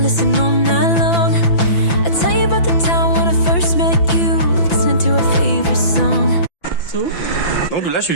listen all night long. I tell you about je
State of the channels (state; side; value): late; right; 5.9 ms